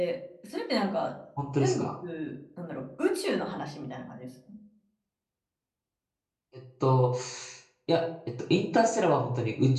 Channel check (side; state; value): both; identical; correlation 1.00